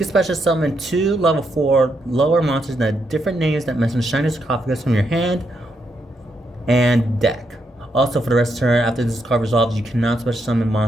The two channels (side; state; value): both; normal; correlation 0.80